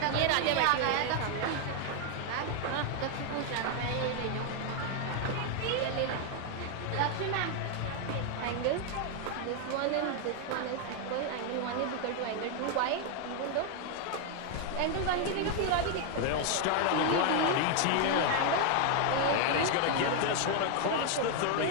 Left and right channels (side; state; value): both; different; correlation 0.00